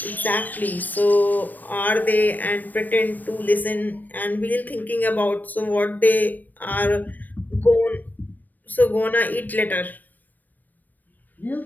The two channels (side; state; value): right; late; 0.087 ms